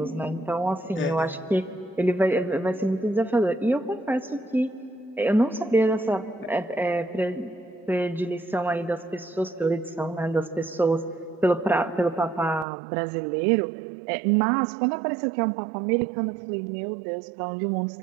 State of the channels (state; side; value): drops out; left; at 12.7 s